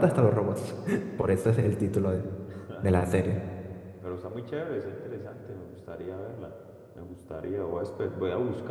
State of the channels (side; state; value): both; identical; correlation 1.00